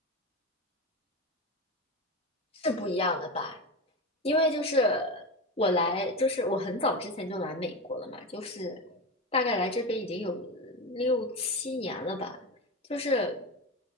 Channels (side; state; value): both; normal; correlation 0.20